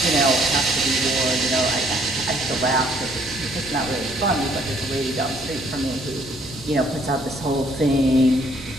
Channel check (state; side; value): normal; both; correlation 0.63